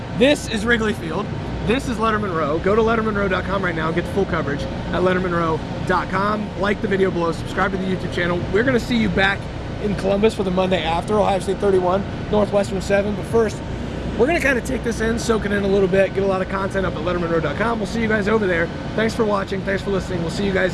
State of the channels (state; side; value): identical; both; correlation 1.00